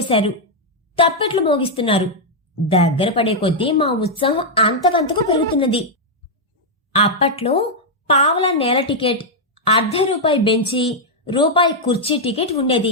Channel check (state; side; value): normal; both; correlation -0.02